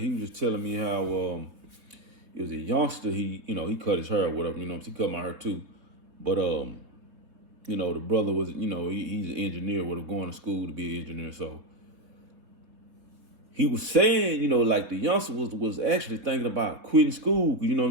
was just telling me how he was a youngster. He cut his hair or whatever. He cut my hair too. But the brother was he's an engineer. Would have gone to school to be an engineer. So he was saying like the youngster was actually thinking about quitting school.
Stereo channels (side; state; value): left; late; 3.7 ms